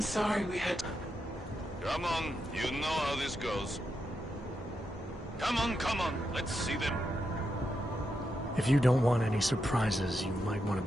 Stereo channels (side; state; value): both; normal; correlation 0.84